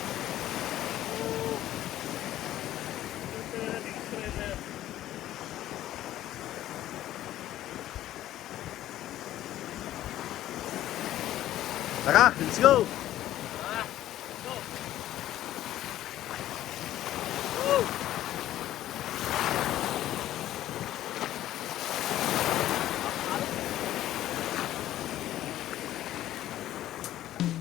Tara, let's go!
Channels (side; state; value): right; quieter; 13.4 dB